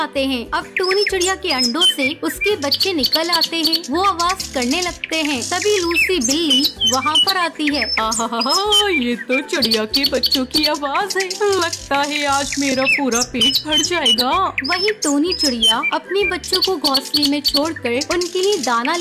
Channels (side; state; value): both; identical; correlation 1.00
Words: हैं। अब टोनी चिड़िया के अंडों से उसके बच्चे निकल आते हैं। वो आवाज करने लगते हैं। तभी लूसी बिल्ली वहाँ पर आती है। आहा, ये तो चिड़िया के बच्चों की आवाज है। लगता है आज मेरा पूरा पेट भर जाएगा। वही टोनी चिड़िया अपने बच्चों को घोंसले में छोड़कर उनके लिए दाना